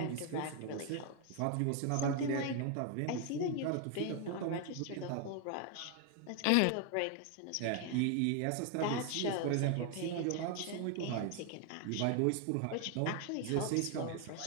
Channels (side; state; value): both; different; correlation 0.01